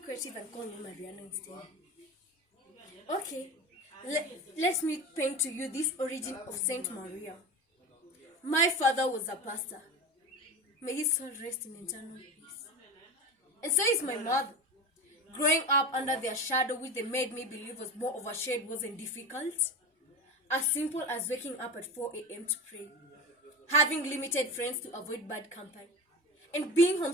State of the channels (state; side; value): normal; both; correlation 0.26